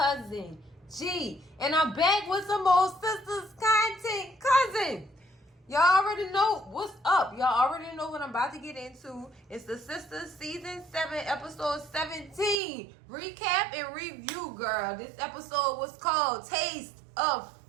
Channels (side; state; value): left; drops out; at 12.6 s